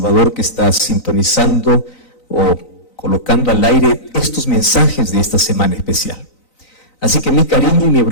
que está sintonizando o colocando al aire estos mensajes de esta semana especial. Así que mi cariño y mi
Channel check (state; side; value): late; right; 3.9 ms